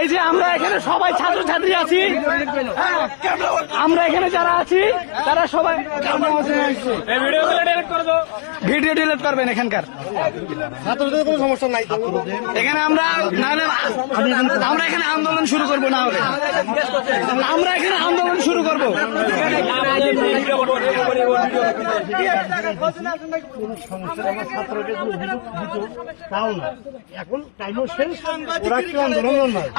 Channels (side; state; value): right; silent; 63 dB below the other